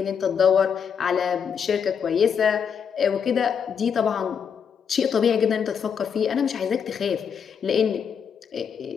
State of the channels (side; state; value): right; quieter; 7.1 dB